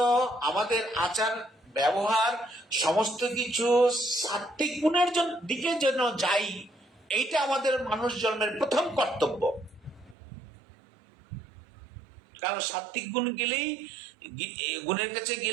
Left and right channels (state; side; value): drops out; left; at 10.2 s